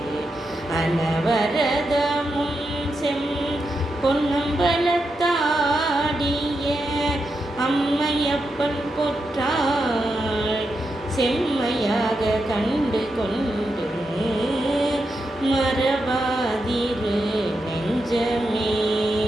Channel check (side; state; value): both; normal; correlation 0.86